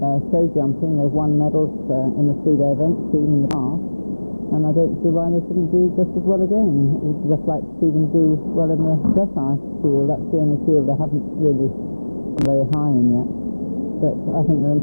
Show jumping, they've won medals in the 3-day event team in the past, and I don't see why they shouldn't do just as well again. We'd just like to see them do well in the dressage field. That's the only field they haven't really gone very high in yet, but I think they're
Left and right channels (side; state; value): both; inverted; correlation -1.00